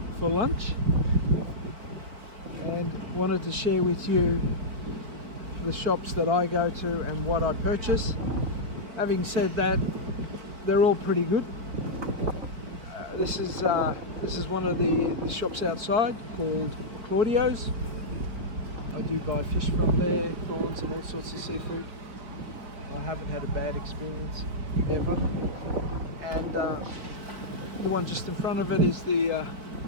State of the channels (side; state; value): left; late; 4.3 ms